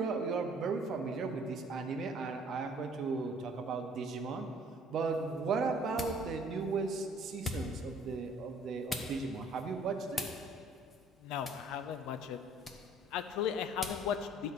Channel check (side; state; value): both; normal; correlation 0.56